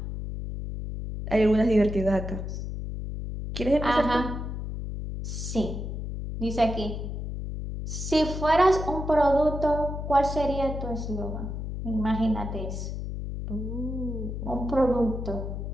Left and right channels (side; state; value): left; noise; hum, 5 dB below the sound